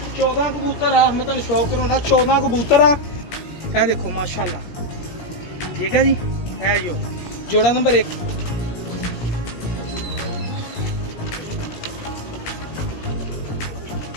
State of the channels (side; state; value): right; late; 17 ms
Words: 14 कबूतर आ मैं तुहानू शौक कराना 14 कबूतर आ ए देखो माशाल्लाह ठीक है जी है जो जोड़ा नंबर 1